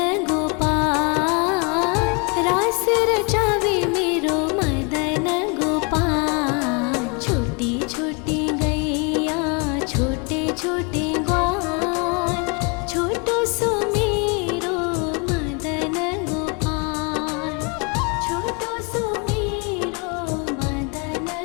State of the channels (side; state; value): right; quieter; 32.6 dB